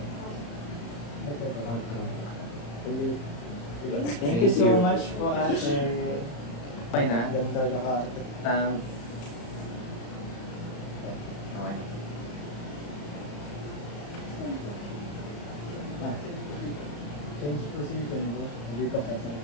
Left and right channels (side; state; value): right; late; 34 ms